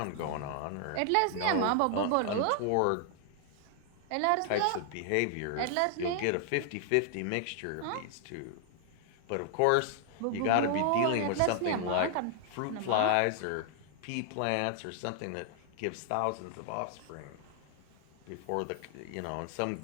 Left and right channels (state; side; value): different; both; correlation 0.00